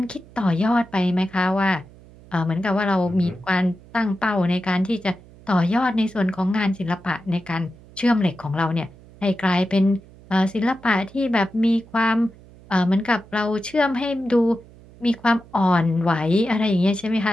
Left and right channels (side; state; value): right; noise; hum, 23 dB below the sound